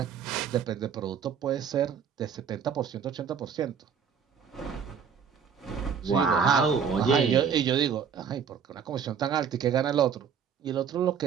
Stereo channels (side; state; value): left; quieter; 7.0 dB